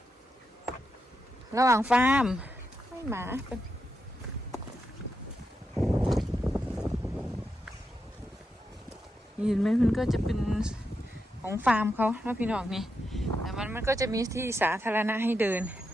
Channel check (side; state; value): both; normal; correlation 0.86